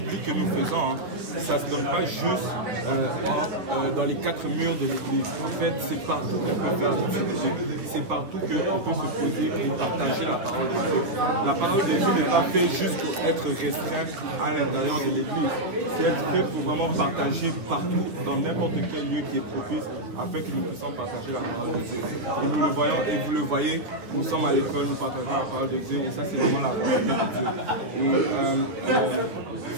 que nous faisons, ça ne se donne pas juste dans les quatre murs de l'église. En fait, c'est partout qu'on peut faire l'étude biblique. C'est partout qu'on peut se poser et partager la parole de Dieu. La parole de Dieu n'est pas faite juste pour être restreinte à l'intérieur de l'église. C'est être fait pour vraiment partager partout, dans n'importe quel lieu qui est propice, afin que nous puissions partager la parole de Dieu. Et nous le voyons, et vous le voyez, nous sommes à l'école, nous partageons la parole de Dieu, et ça c'est vraiment la volonté de Dieu. Et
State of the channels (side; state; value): left; late; 9.7 ms